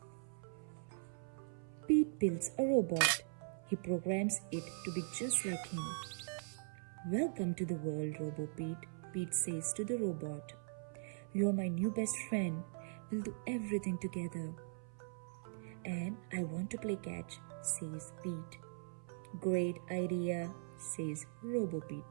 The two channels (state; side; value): silent; left; 50 dB below the other